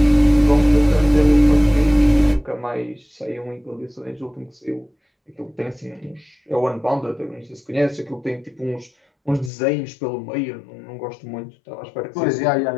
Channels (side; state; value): right; drops out; at 9.5 s